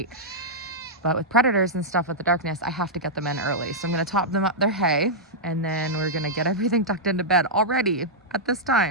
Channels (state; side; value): normal; both; correlation -0.10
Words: But with predators and stuff with the darkness, I have to get them in early. So I'm going to top them up their hay, and then we're going to get everything tucked into bed already at this